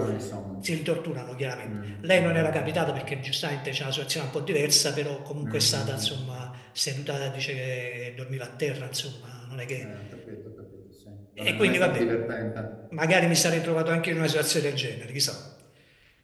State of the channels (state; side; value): identical; both; correlation 1.00